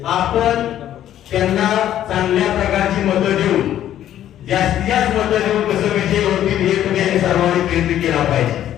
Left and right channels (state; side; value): quieter; right; 11.6 dB